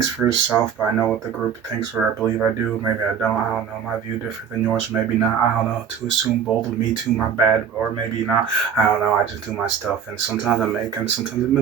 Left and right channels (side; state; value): left; quieter; 7.6 dB